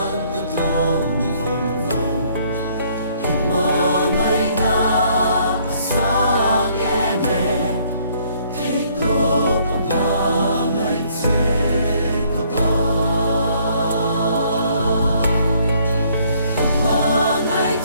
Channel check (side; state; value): both; inverted; correlation -0.64